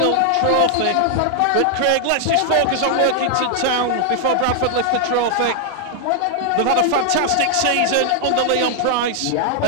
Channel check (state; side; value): different; both; correlation 0.00